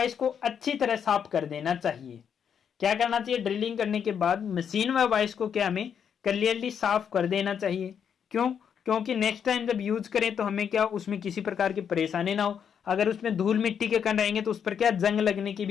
को अच्छी तरह साफ कर देना चाहिए। क्या करना चाहिए, ड्रिलिंग करने के बाद मशीन व वाइस को क्या हमें क्लियरली साफ कर देना चाहिए। क्यों, क्योंकि नेक्स्ट टाइम जब यूज करें तो हमें क्या उसमें किसी प्रकार की परेशानी ना हो। अगर उसमें धूल मिट्टी के कण रहेंगे तो उस पर क्या जंग लगने की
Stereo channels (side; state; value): right; quieter; 7.8 dB